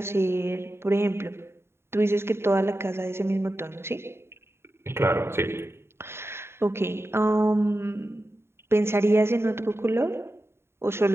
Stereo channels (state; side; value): late; left; 0.12 ms